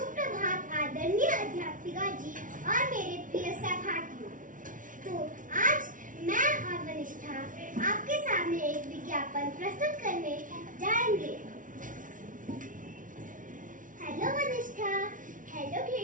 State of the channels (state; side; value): late; left; 0.38 ms